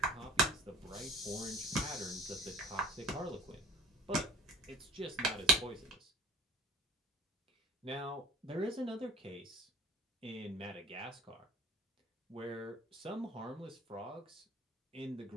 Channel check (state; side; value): normal; both; correlation 0.46